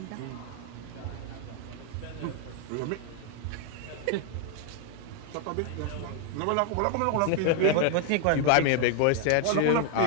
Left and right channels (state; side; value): different; both; correlation 0.00